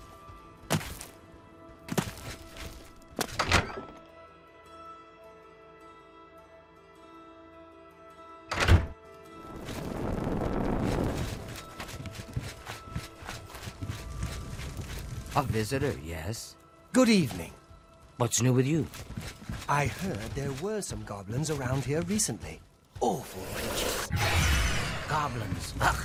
A visitor, yes? Good evening. What's new with you? I heard there were some goblins around here recently. Awful creatures. Goblins. Ugh.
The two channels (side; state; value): both; identical; correlation 1.00